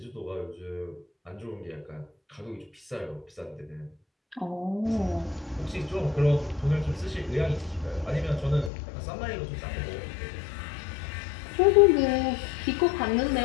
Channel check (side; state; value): right; drops out; at 8.7 s